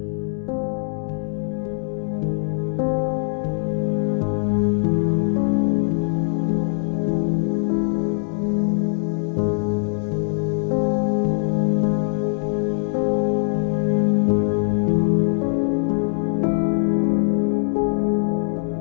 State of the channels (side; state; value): right; silent; digital silence